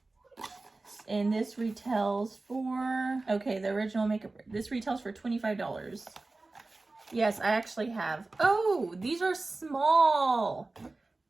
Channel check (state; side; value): quieter; left; 3.3 dB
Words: And this retails for, okay, the original makeup, this retails for $25. Yes, I actually have. Oh, these are small.